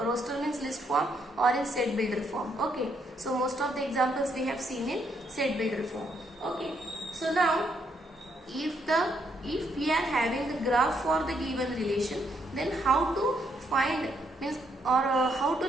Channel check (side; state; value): both; normal; correlation 0.74